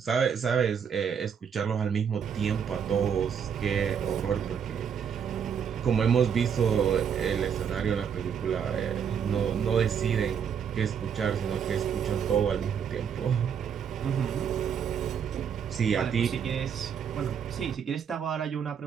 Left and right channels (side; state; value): left; quieter; 7.5 dB